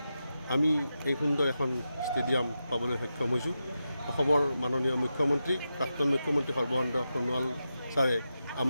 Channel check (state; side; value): inverted; both; correlation -0.89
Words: আমি এই সুন্দৰ এখন ষ্টেডিয়াম পাবলৈ সক্ষম হৈছোঁ। অসমৰ মাননীয় মুখ্যমন্ত্ৰী, প্ৰাক্তন মুখ্যমন্ত্ৰী সৰ্বানন্দ সোণোৱাল ছাৰে